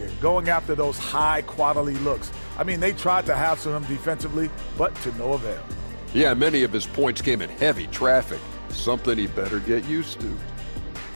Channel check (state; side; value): inverted; both; correlation -1.00